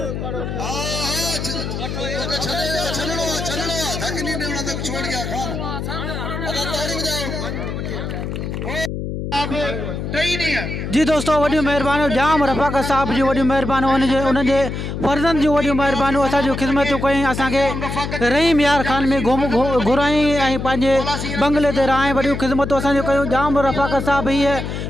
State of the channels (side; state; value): left; noise; hum, 5 dB below the sound